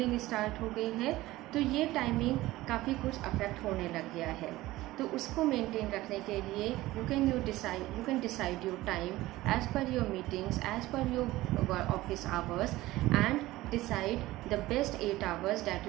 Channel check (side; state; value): left; quieter; 17.6 dB